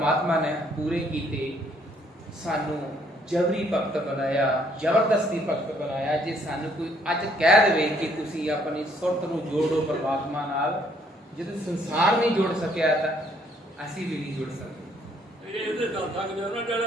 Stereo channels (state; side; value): normal; both; correlation 0.66